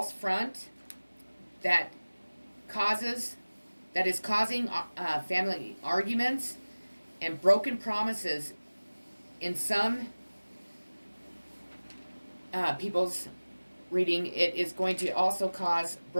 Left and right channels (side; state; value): both; inverted; correlation -1.00